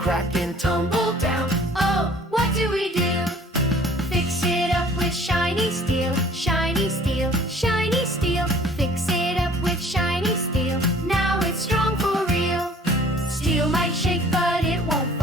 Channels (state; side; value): normal; both; correlation 0.53